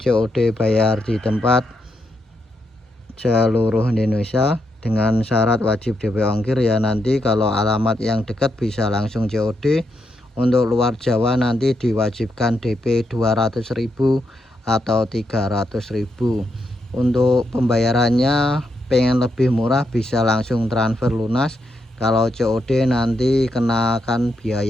bayar di tempat seluruh Indonesia dengan syarat wajib DP ongkir ya. Nanti kalau alamat yang dekat bisa langsung COD. Untuk luar Jawa nanti diwajibkan DP 200.000 atau 300.000. Untuk pembayarannya pengen lebih murah bisa langsung transfer lunas. Kalau COD nanti kenakan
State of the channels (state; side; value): normal; both; correlation 0.81